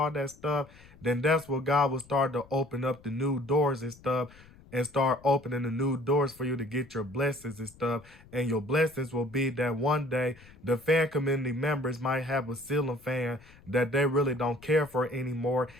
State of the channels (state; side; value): noise; left; rumble, 24 dB below the sound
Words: that stuff, then that's what God will start to open up the new doors and stuff, and start opening the new doors for you to get your blessings and stuff. And your blessings will be that one day the fan community members might have a ceiling fan that they really don't care for anymore.